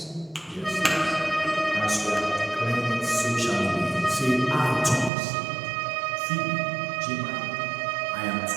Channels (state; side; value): drops out; left; at 5.1 s